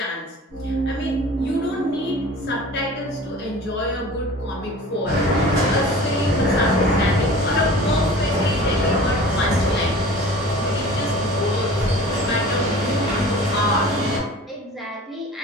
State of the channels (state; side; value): normal; both; correlation 0.42